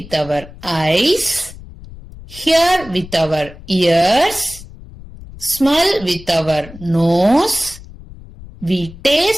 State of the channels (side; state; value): left; noise; rumble, 17 dB below the sound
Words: our eyes, hear with our ears, smell with our nose, we